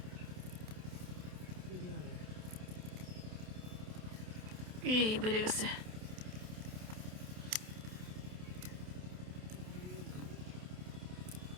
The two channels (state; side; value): late; left; 27 ms